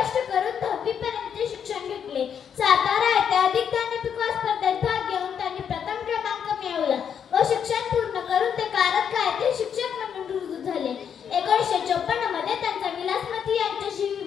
करून 10वी पर्यंतचे शिक्षण घेतले. सातारा येथे अधिक ज्ञानपिक स्पर्धेत भाग घेऊन त्यांनी प्रथम क्रमांक मिळवला व शिक्षण पूर्ण करून ते कारंजा येथे शिक्षक म्हणून रुजू झाले. 1954 मध्ये त्यांचा विलासमती यांच्याशी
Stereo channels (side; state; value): right; quieter; 7.9 dB